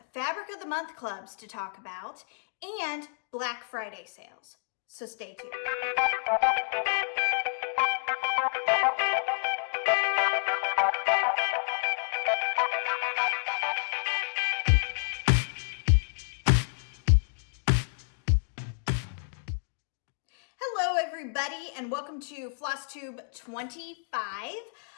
Fabric of the Month clubs to talk about, and Black Friday sales. So stay tuned. Everybody, and welcome to Flosstube 25.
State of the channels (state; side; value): silent; right; digital silence